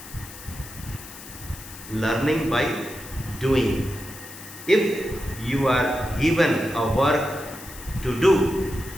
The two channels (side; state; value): left; noise; hiss, 15 dB below the sound